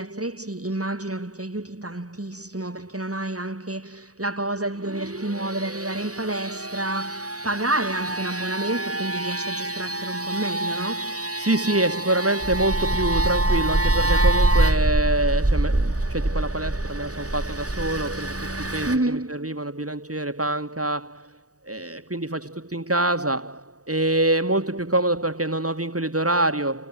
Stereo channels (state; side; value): late; left; 0.66 ms